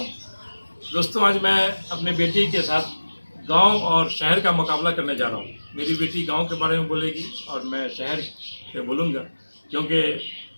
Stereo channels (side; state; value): both; inverted; correlation -1.00